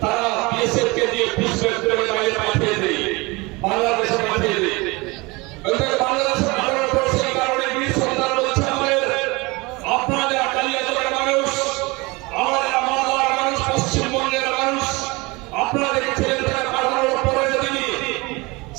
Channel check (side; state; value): left; quieter; 24.7 dB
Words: তারা বিএসএফকে দিয়ে পিছনে বাইরে পাঠিয়ে দেয়, বাংলাদেশে পাঠিয়ে দেয়। বাংলাদেশে পাঠানোর পর সেই কারণে বীর সন্তান বলছে আমাদের, আপনারা কালিয়াচকের মানুষ, আমাদের মালদার মানুষ, পশ্চিমবঙ্গের মানুষ, আপনারা দেখেছিলেন তাকে পাঠানোর পরে যদি